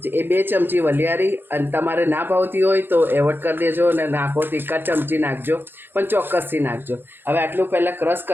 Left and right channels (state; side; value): late; left; 0.10 ms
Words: એ 2 ચમચી વલિયારી. અને તમારે ના ભાવતી હોય તો એવોર્ડ કરી દેજો અને નાખો તો 1 ચમચી નાખજો, પણ ચોક્કસથી નાખજો. હવે આટલું પહેલાં ક્રશ